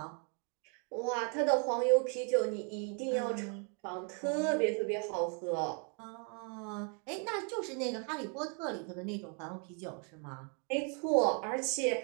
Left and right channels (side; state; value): left; quieter; 39.9 dB